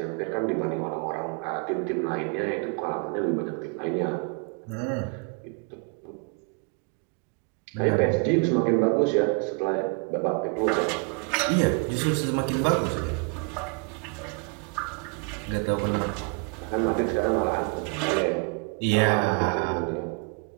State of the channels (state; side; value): quieter; left; 35.8 dB